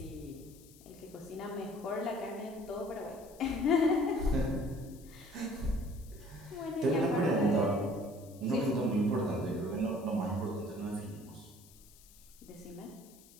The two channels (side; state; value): left; noise; hiss, 23 dB below the sound